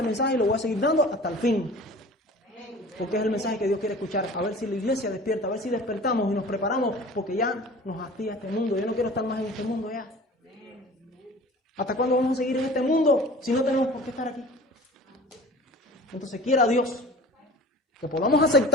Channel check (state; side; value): normal; both; correlation 0.38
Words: mensaje y lo voy a seguir dando hasta el fin. Porque es el mensaje que Dios quiere escuchar. A ver si la iglesia despierta, a ver si despertamos y nos preparamos, porque ya nos hastía este mundo. Yo no quiero estar más en este mundo ya. ¿Hasta cuándo vamos a seguir en este mundo si no tenemos por qué estar aquí? Entonces quiera Dios que podamos